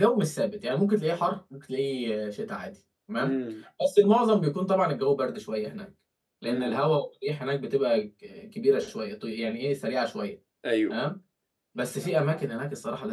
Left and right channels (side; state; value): both; identical; correlation 1.00